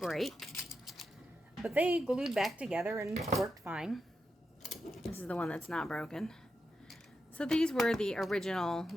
But they glued back together and worked fine. This is the one that's not broken. So these were the original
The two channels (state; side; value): normal; both; correlation 0.87